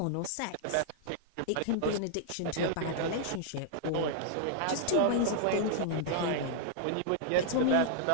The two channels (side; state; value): both; different; correlation -0.01